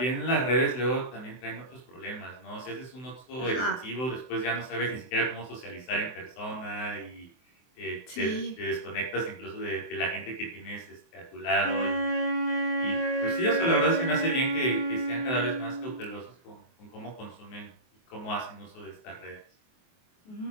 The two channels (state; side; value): late; right; 24 ms